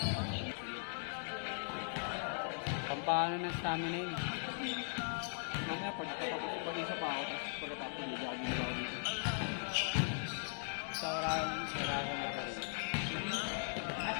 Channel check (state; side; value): silent; right; digital silence